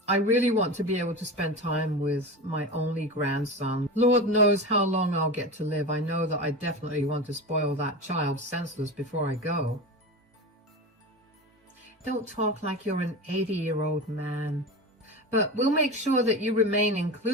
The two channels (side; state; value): both; normal; correlation 0.26